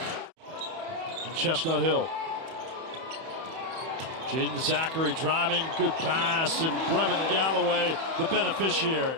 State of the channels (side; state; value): left; late; 31 ms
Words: And Chestnut Hill. Jaden Zachary driving, good pass, and Brevin Galloway, the